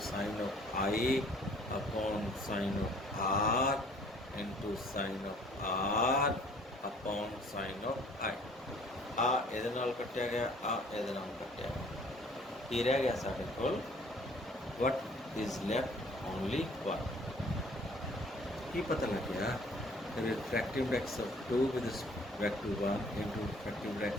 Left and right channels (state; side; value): normal; both; correlation 0.56